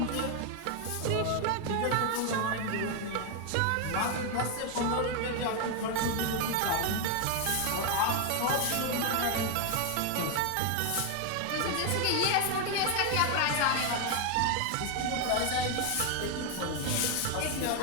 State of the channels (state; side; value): different; both; correlation 0.01